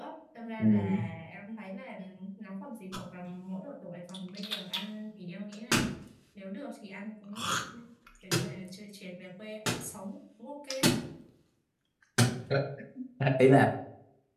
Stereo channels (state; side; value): identical; both; correlation 1.00